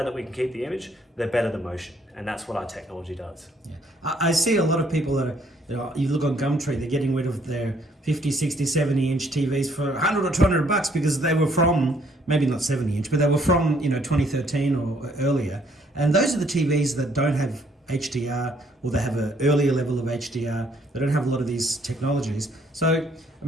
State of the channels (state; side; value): normal; both; correlation 0.66